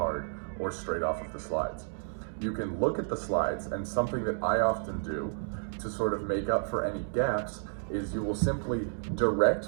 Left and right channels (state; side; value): silent; left; digital silence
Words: or straight off of the slides. You can look at the slides, and something that I often do to sort of make up for any gaps is you will simply